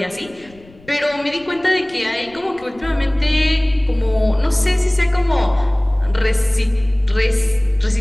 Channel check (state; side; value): noise; left; rumble, 25 dB below the sound